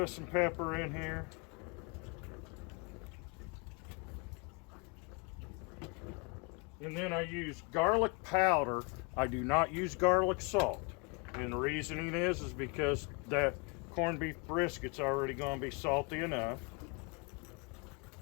us some pepper in here. And then I use garlic powder. I do not use garlic salt. And the reasoning is because that corned beef brisket's already going to be salty enough.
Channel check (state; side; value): quieter; right; 32.3 dB